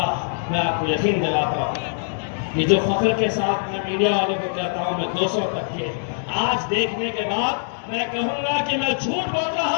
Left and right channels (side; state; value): right; silent; digital silence